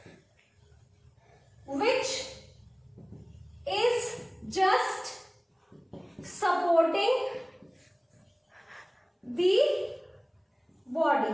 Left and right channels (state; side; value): identical; both; correlation 1.00